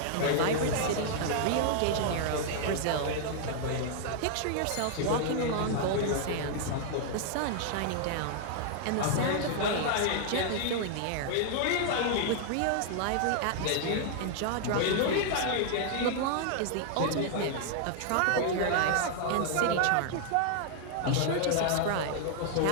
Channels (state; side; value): different; both; correlation -0.01